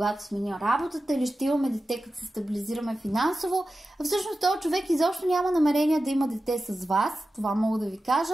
сменя работата, или ще имаме дете, като се стабилизираме финансово. А всъщност този човек изобщо няма намерение да има дете с вас, това мога да ви кажа.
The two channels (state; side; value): normal; both; correlation 0.93